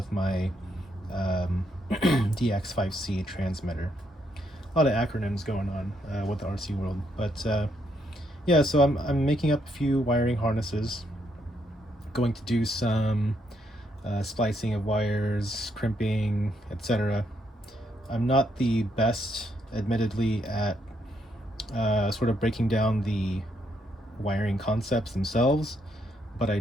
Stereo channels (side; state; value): both; normal; correlation 0.75